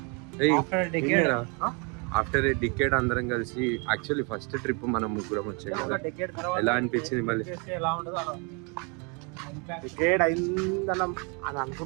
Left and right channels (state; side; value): quieter; left; 33.8 dB